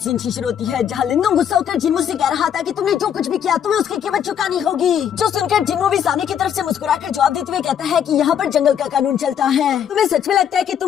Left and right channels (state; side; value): quieter; right; 8.9 dB